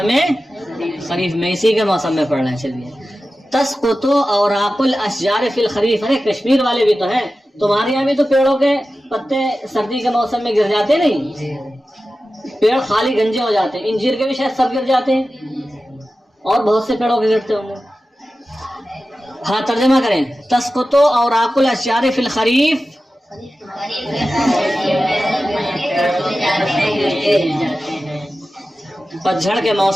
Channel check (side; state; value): both; normal; correlation 0.94